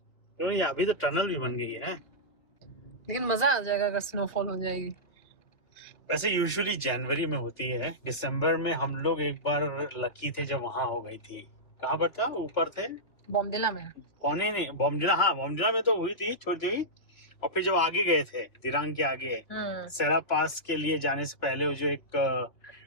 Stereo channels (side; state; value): right; late; 2.7 ms